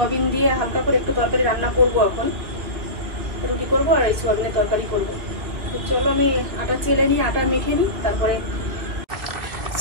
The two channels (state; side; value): late; left; 2.3 ms